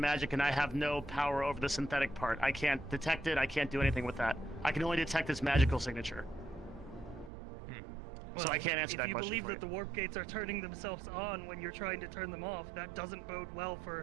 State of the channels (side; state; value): left; drops out; at 7.3 s